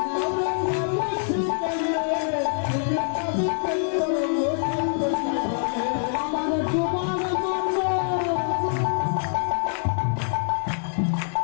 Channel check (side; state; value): right; silent; digital silence